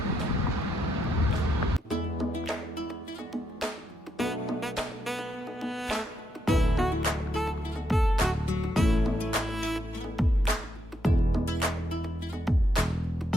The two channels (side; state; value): both; normal; correlation 0.79